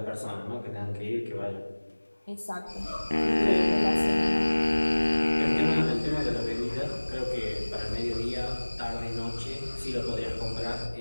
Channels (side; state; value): both; inverted; correlation -1.00